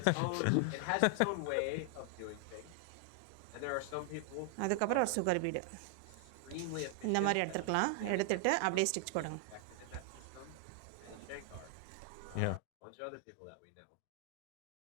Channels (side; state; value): both; different; correlation 0.00